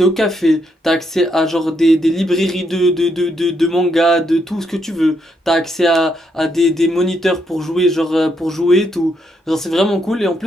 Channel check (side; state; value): both; normal; correlation 0.77